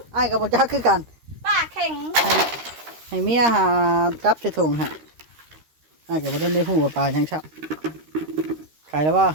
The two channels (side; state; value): left; late; 13 ms